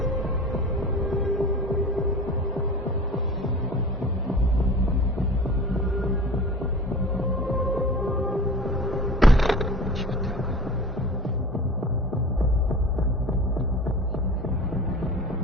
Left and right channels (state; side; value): normal; both; correlation 0.38